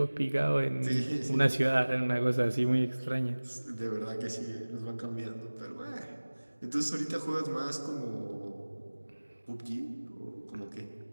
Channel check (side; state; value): both; inverted; correlation -1.00